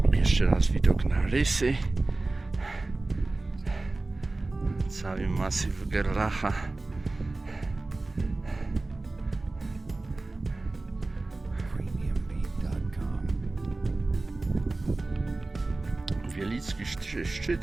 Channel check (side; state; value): left; quieter; 3.2 dB